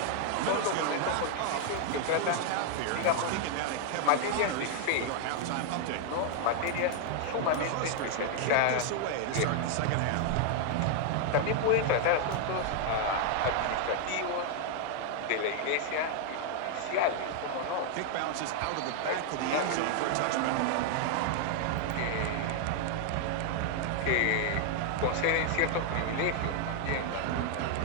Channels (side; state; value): both; different; correlation 0.00